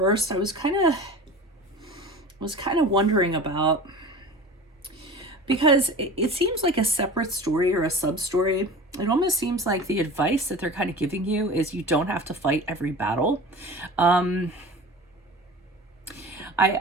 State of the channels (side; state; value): both; normal; correlation 0.36